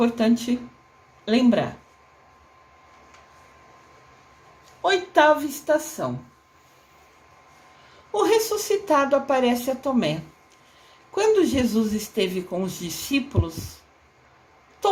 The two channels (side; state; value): both; identical; correlation 1.00